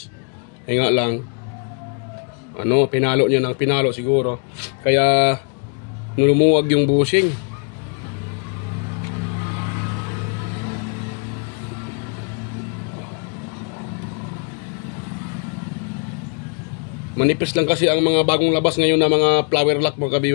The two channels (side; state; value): right; quieter; 39.5 dB